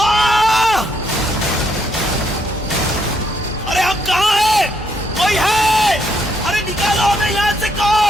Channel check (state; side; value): normal; both; correlation 0.74